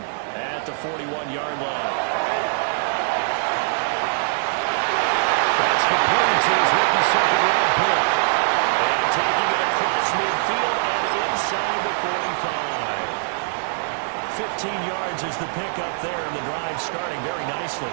at the 41-yard line. That's complete to his rookie second-round pick. And taking it across midfield and inside the 45. 15 yards is the pickup there, and the drive starting very nicely.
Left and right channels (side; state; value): left; silent; 64 dB below the other